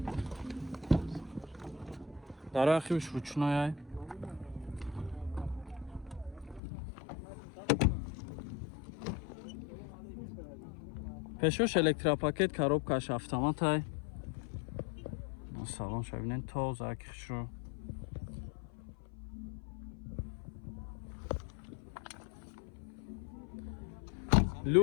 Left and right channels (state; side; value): drops out; right; at 6.6 s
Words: дарахиш ручнояй пешош электропакет коробкаш автоматай салон шабинен тоза хушро